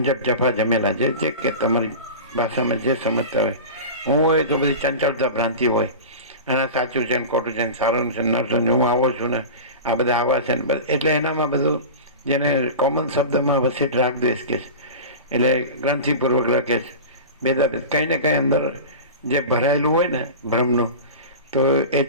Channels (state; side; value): inverted; both; correlation -0.30